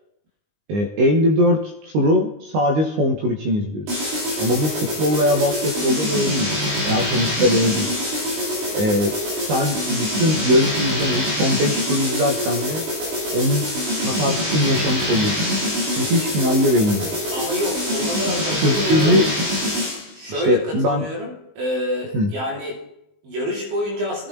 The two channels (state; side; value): late; left; 19 ms